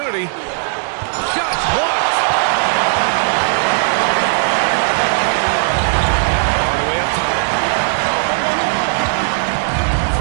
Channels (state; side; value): silent; left; digital silence